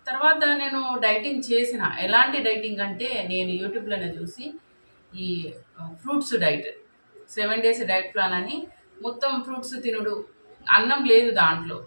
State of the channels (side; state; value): both; inverted; correlation -1.00